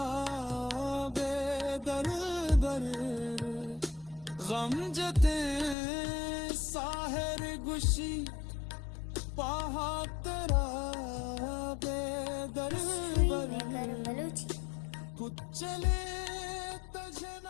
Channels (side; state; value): right; drops out; at 5.8 s